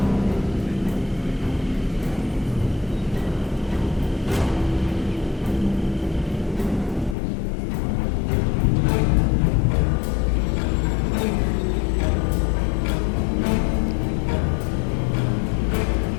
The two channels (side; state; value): right; drops out; at 7.2 s